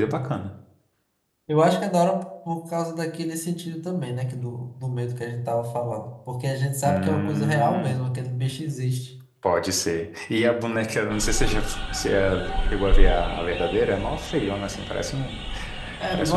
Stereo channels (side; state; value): both; identical; correlation 1.00